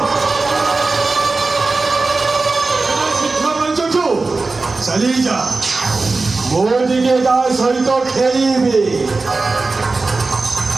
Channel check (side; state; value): left; quieter; 3.7 dB